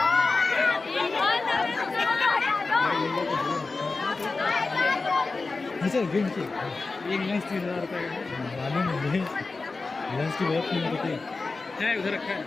गिन के एक लेंस 3000 रुपये मालूम मुझे, लेंस की बहुत कीमत होती है। उधर रखा है।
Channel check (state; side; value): quieter; right; 3.8 dB